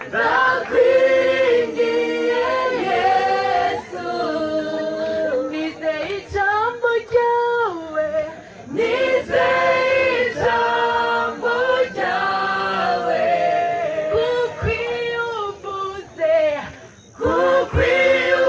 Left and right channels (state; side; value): identical; both; correlation 1.00